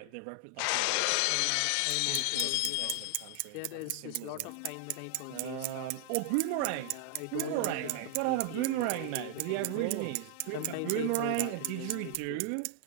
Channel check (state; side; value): different; both; correlation 0.00